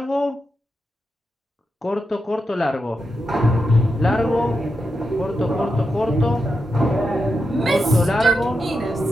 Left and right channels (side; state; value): both; normal; correlation 0.87